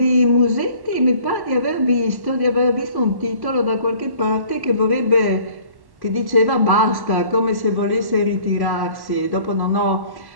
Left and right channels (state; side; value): late; left; 1.1 ms